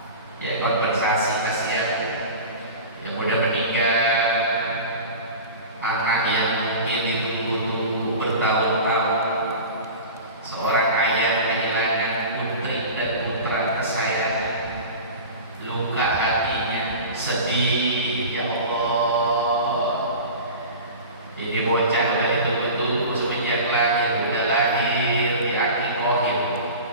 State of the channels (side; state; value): both; inverted; correlation -0.34